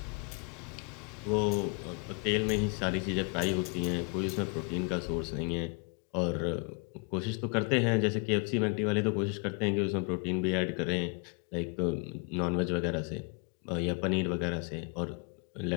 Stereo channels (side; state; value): right; quieter; 34.3 dB